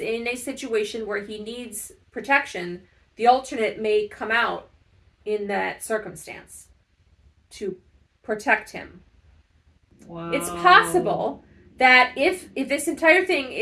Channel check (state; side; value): identical; both; correlation 1.00